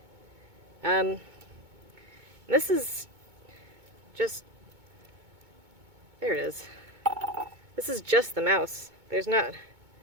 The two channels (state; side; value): late; left; 2.2 ms